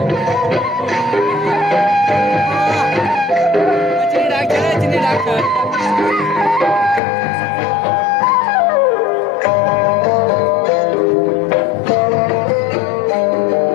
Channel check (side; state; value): right; drops out; at 7.0 s